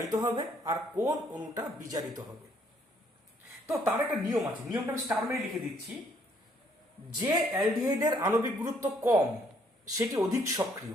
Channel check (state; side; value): normal; both; correlation 0.66